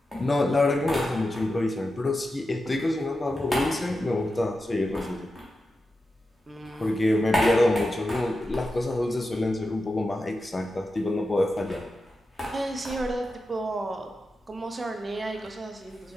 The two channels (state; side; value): normal; both; correlation 0.90